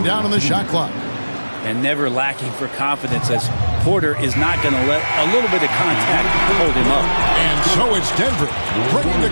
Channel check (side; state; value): both; inverted; correlation -1.00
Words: down on the shot clock. And never lacking for confidence, as Porter is not going to let a little bit of contact hold him up. And so it's Denver bringing the